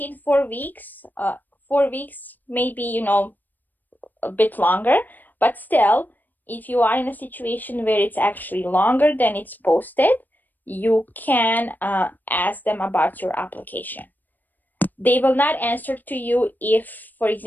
4 weeks, 4 weeks, maybe, a bit longer, but still, if you are in a situation where it's actually longer than it's posted, you can ask them about your application. They will not answer to you if, for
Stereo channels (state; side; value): late; right; 0.088 ms